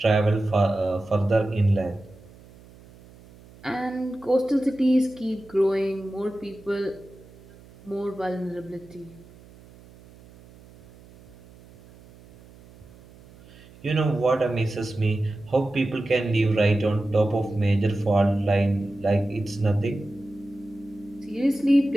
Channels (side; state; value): right; noise; hum, 23 dB below the sound